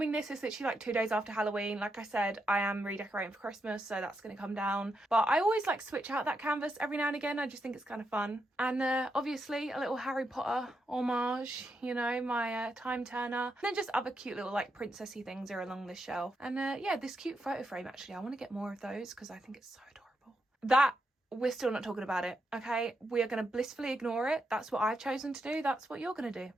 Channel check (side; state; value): both; normal; correlation 0.83